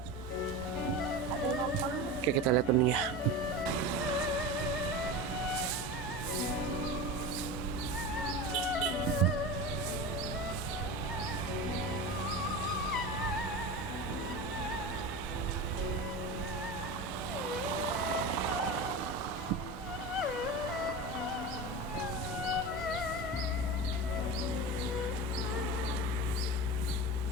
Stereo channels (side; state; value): both; normal; correlation 0.27